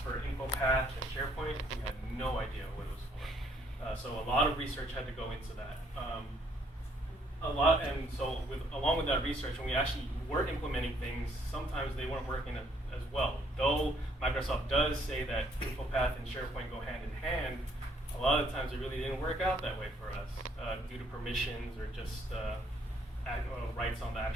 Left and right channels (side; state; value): both; normal; correlation 0.66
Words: for Infopath and Sharepoint, we had no idea what it was for. So a lot of research had to go into that. Along with that research, when we actually were implementing things, sometimes they weren't working as well. Though Microsoft does say that Infopath and SharePoint go hand in hand, a lot of times it really didn't work out that way for us due to permissions or just rights on the